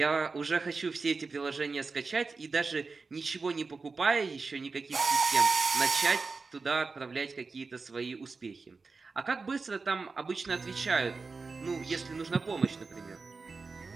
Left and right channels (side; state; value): left; quieter; 4.3 dB